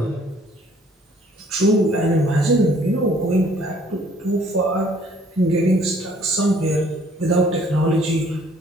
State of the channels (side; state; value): both; normal; correlation 0.59